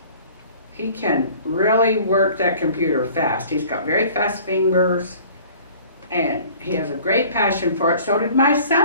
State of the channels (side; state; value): both; inverted; correlation -0.49